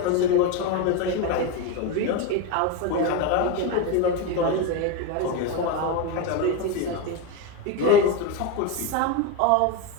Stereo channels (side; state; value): both; different; correlation 0.04